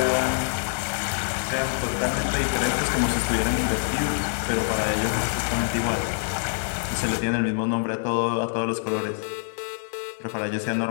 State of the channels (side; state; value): right; silent; digital silence